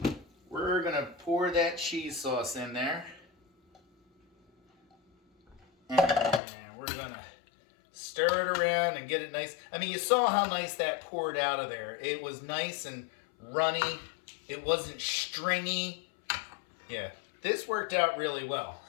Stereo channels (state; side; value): drops out; right; at 6.4 s